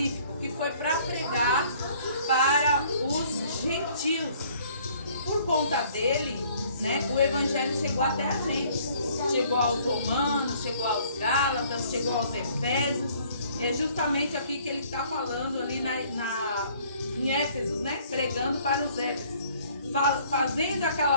que foi para pregar para os gentios. Por conta dele, né, o evangelho chegou até a gente. Chegou aos romanos, chegou aos gálatas, chegou aos efésios. É justamente aqui que ele está falando ali em Éfesos, né? Pregando para os Éfesos. Fazendo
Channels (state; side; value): inverted; both; correlation -0.58